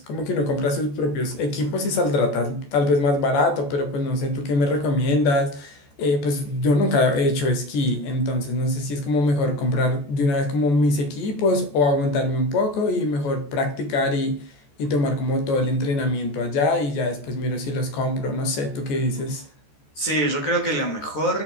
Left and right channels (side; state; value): right; late; 14 ms